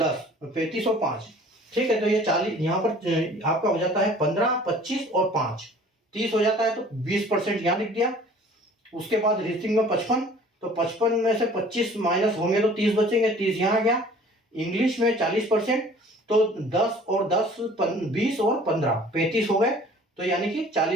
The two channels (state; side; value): normal; both; correlation 0.50